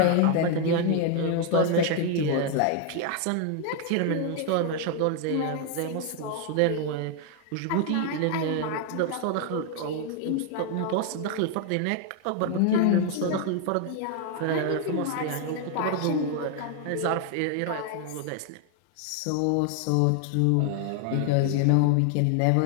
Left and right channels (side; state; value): both; different; correlation 0.00